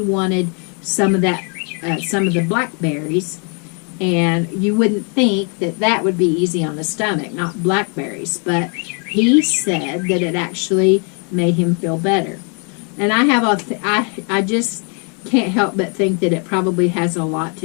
wanted some of that, some of the blackberries. And you wouldn't think that that would be easy on the stomach, not blackberries, but he said that it actually made him feel better. And I just can't help but think that it probably has a lot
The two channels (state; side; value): quieter; right; 37.7 dB